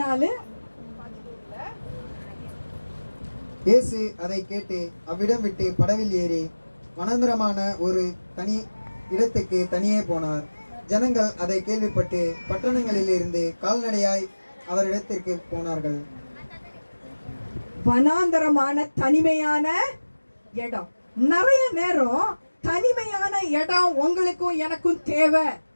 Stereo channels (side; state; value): both; inverted; correlation -1.00